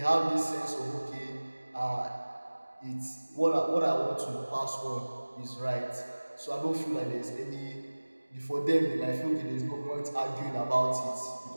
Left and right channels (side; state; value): both; inverted; correlation -1.00